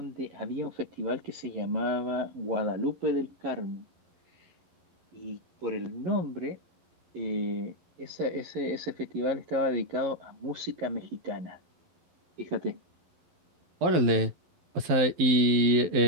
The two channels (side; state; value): left; late; 12 ms